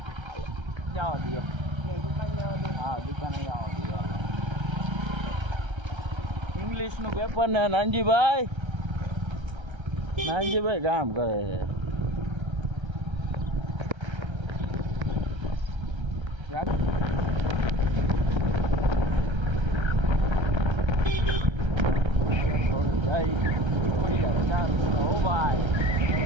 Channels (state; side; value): late; left; 1.3 ms